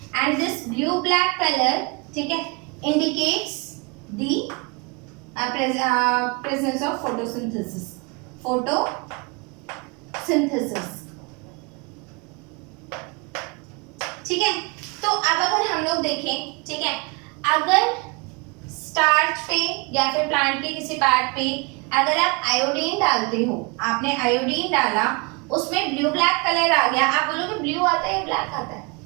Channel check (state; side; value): quieter; left; 30.2 dB